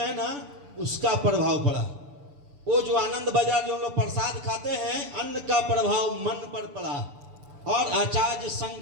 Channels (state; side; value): late; left; 6.9 ms